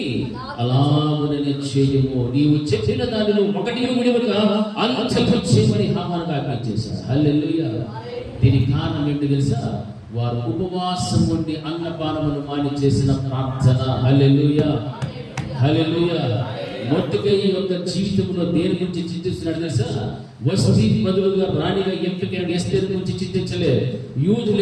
అలాగనే చేయము, నీవు చెప్పిన దానిలో ఒకటి విడివక అంతకు చేయమని హామానుకు ఆజ్ఞాపించేశాడు. హల్లెలూయా. దీనికి కారణం ఏంటి తెలుసా? వారు ఉపవాసం ఉండి అన్నపానములు మాని చేసిన ప్రార్థన. హల్లెలూయా. హల్లెలూయా. మొర్దెకై యొక్క జీవితంలో దేని గురించి చింతిస్తున్నాడు తెలుసా? వస్తీ బదులుగా రాణిగా ఎంపికైన ఎస్తేరు గురించి చింతించలే,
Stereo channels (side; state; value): both; identical; correlation 1.00